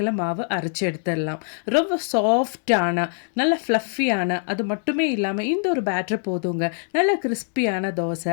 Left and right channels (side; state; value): right; silent; 63 dB below the other